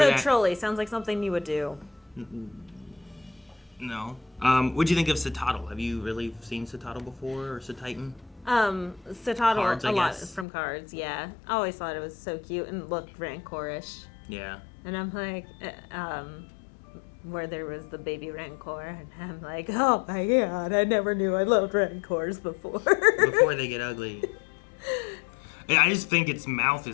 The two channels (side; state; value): right; drops out; at 10.5 s